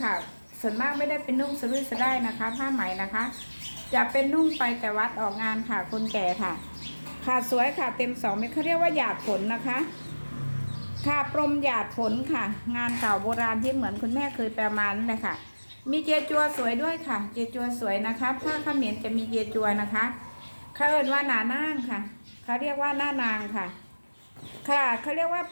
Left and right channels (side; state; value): both; inverted; correlation -1.00